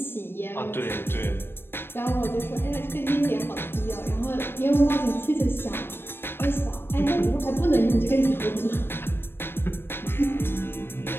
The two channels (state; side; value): late; right; 0.11 ms